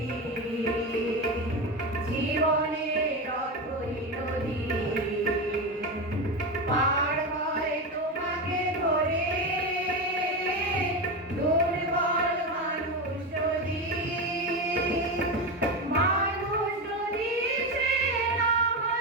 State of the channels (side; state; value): both; normal; correlation 0.17